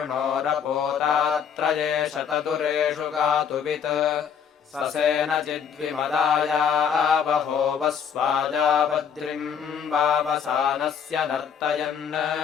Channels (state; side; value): quieter; right; 7.4 dB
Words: शतदुरेषु गातुवित् ससेनचिद्विमदाया बहो वस्वाजावद्रिम् वावसानस्य नर्तयन्